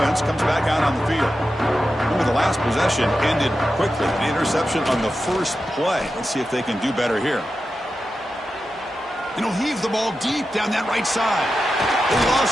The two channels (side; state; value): both; normal; correlation 0.91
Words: offense comes back out on the field. Remember, the last possession ended quickly. An interception on the first play. Let's see if they can do better here. And he'll heave the ball deep down that right side. They